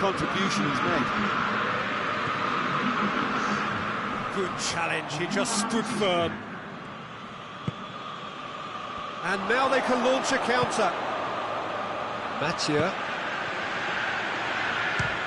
he's made. Good challenge, he just stood firm. And now they can launch a counter. Mathieu.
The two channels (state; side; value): identical; both; correlation 1.00